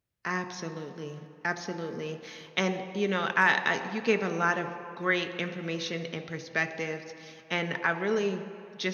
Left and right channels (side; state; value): both; identical; correlation 1.00